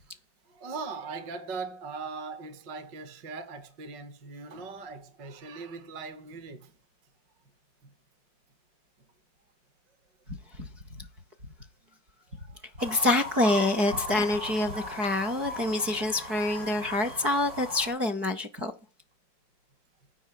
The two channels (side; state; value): left; late; 4.7 ms